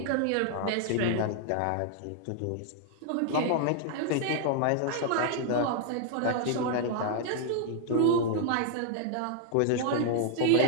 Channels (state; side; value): different; both; correlation 0.00